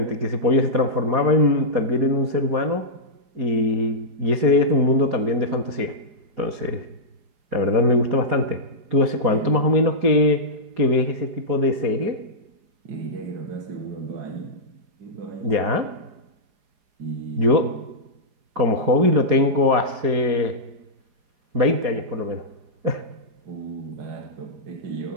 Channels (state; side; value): late; left; 4.8 ms